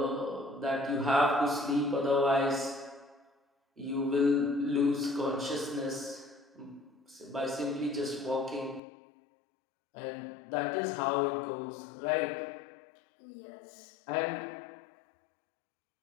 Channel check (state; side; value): drops out; right; at 8.8 s